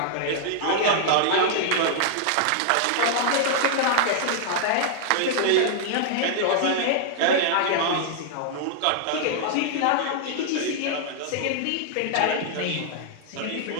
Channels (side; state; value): both; different; correlation -0.01